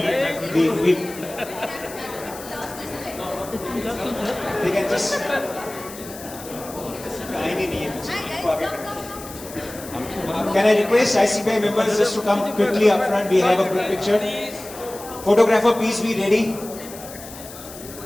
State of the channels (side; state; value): left; noise; hiss, 15 dB below the sound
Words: we they can just... Can I request ICBI members just to come quickly up front? We have a group picture. Photographer, please be ready.